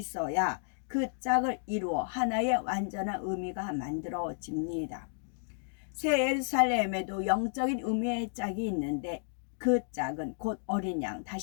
그 짝을 이루어 하나의 완전한 의미가 만들어집니다. 새 예루살렘에도 영적인 의미의 짝이 있는데 그 짝은 곧 어린 양,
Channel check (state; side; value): silent; right; digital silence